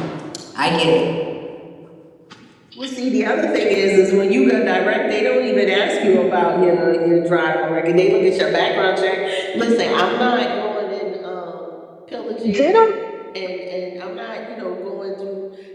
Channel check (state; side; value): identical; both; correlation 1.00